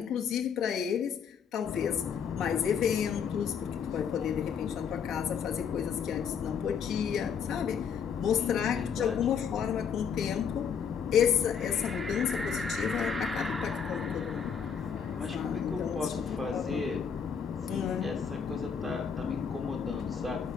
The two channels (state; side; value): quieter; right; 7.0 dB